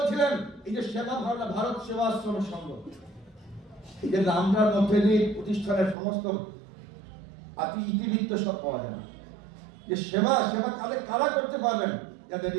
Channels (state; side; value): drops out; left; at 6.0 s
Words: এই যে সেবা ভাবনা, ভারত সেবাশ্রম সংঘ, এই যে নামটার মধ্যে দিয়ে প্রতিষ্ঠানের সমস্ত ইতিবৃত্ত সব পাওয়া যায় না। যে সেবা কারা করতে পারবেন? যাদের